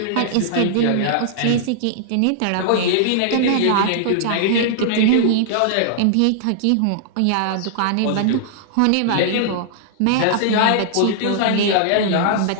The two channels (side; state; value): both; different; correlation -0.01